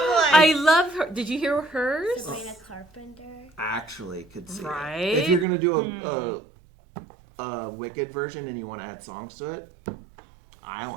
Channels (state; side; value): drops out; left; at 5.5 s